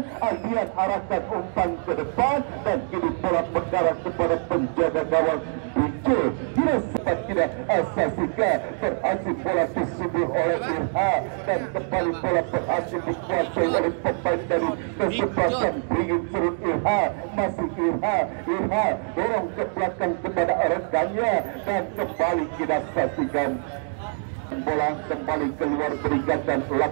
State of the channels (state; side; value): silent; left; 62 dB below the other